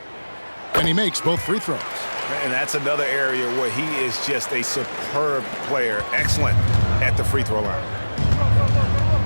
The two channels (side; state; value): both; inverted; correlation -1.00